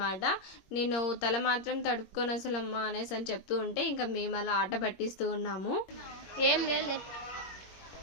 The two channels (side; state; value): right; late; 21 ms